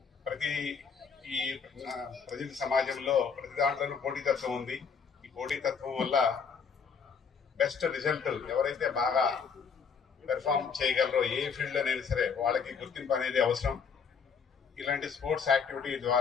ఈ ప్రజల సమాజంలో ప్రతి దాంట్లోనూ పోటీతత్వం ఉంది. ఈ పోటీతత్వం వల్ల బెస్ట్ రిజల్ట్ ఎవరైతే బాగా పెర్ఫామ్ చేయగలరో ఏ ఫీల్డ్లోనైనా సరే వాళ్ళకి గుర్తింపు అనేది అవసరం. ఇలాంటి స్పోర్ట్స్ యాక్టివిటీ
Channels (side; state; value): right; quieter; 6.0 dB